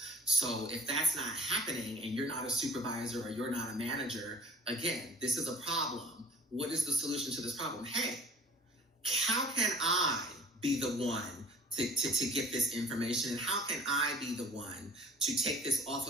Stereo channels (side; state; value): both; normal; correlation 0.48